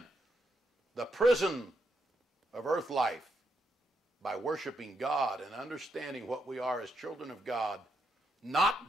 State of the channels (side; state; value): both; normal; correlation 0.79